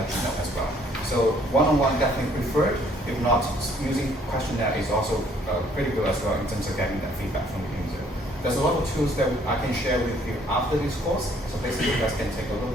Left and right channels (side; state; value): both; normal; correlation 0.62